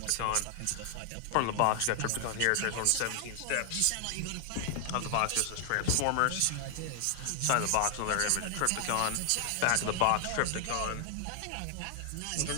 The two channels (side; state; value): both; different; correlation 0.00